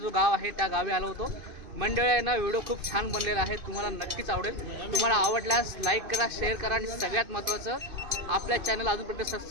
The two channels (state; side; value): late; left; 2.5 ms